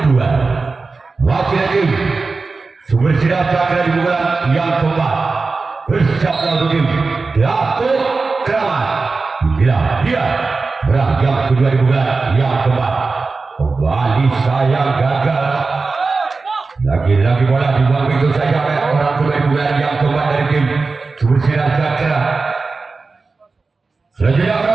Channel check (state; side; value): quieter; left; 4.0 dB